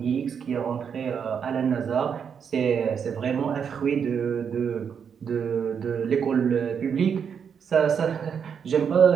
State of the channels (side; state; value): left; quieter; 7.1 dB